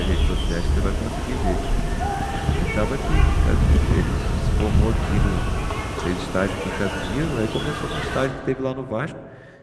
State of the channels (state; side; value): identical; both; correlation 1.00